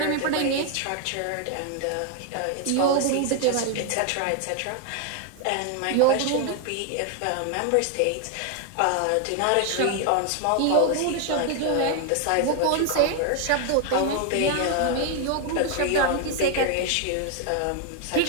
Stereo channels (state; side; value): different; both; correlation 0.01